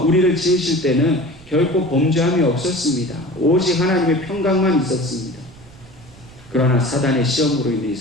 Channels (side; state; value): right; noise; rumble, 22 dB below the sound